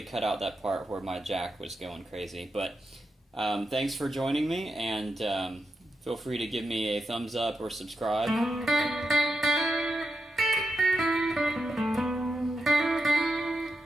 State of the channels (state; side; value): normal; both; correlation 0.87